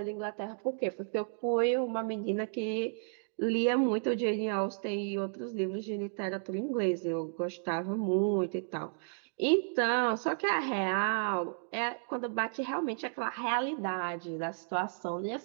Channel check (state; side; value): silent; left; digital silence